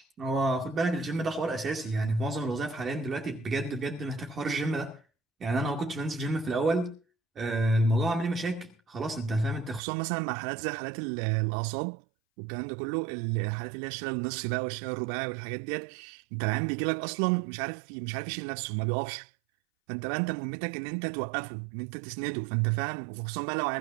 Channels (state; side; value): drops out; left; at 9.8 s